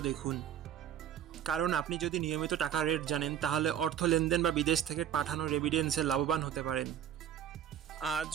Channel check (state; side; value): quieter; left; 10.0 dB